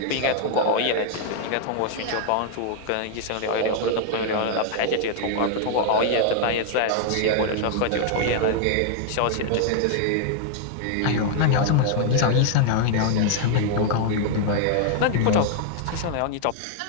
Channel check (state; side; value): different; both; correlation 0.00